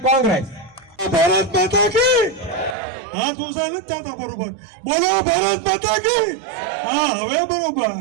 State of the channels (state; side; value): drops out; left; at 2.8 s